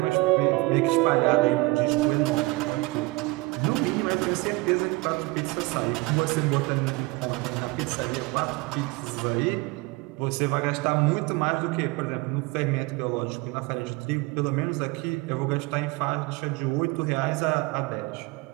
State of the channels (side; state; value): left; quieter; 23.7 dB